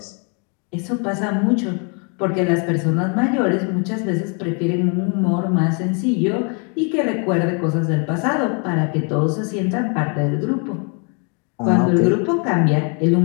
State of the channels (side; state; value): right; quieter; 36.9 dB